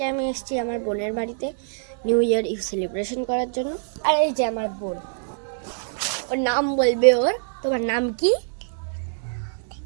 আমি এসেছি আমার বোনের বাড়িতে নিউ ইয়ার ইভ সেলিব্রেশন করার জন্য। আর এই যে আমার বোন, ওর নাম বলবে ওর। তোমার নাম কি?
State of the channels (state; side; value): silent; left; 62 dB below the other